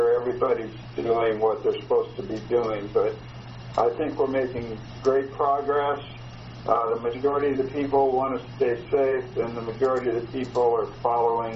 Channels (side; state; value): both; identical; correlation 1.00